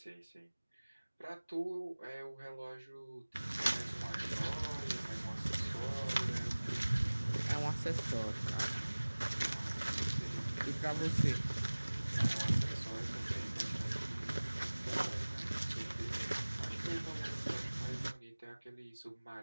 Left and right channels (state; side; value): inverted; both; correlation -1.00